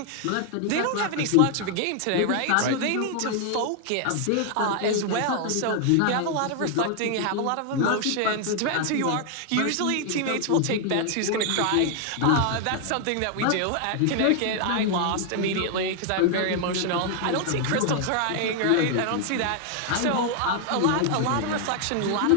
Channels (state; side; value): different; both; correlation 0.00